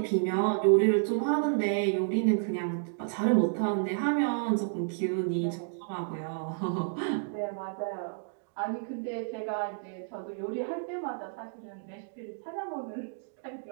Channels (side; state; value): left; silent; digital silence